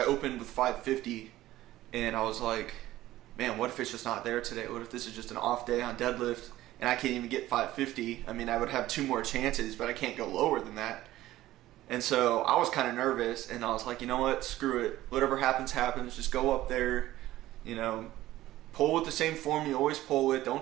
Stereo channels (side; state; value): left; quieter; 15.4 dB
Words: opened with 550, and I was like, man, what if it's just not there today? What if this is just an off day on deadlift and I can't even get 550? I mean, I would have 2 more chances, but I can't go lower than that. And so I was kind of nervous, and I was like, you know what, screw it. Whatever happens, happens. Just go up there, pull with the same form you always pull with. Don't